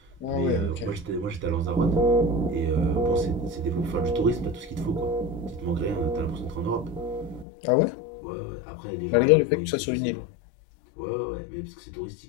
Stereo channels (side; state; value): right; drops out; at 7.5 s